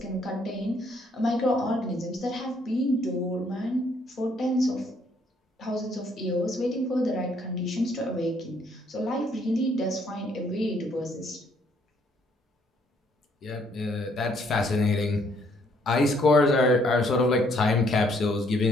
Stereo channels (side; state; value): both; normal; correlation 0.67